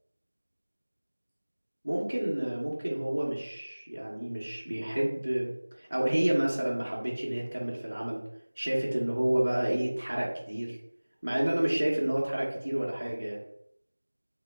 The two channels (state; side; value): inverted; both; correlation -1.00